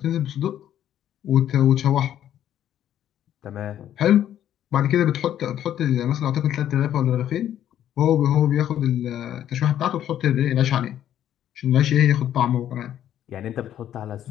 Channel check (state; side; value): quieter; right; 11.0 dB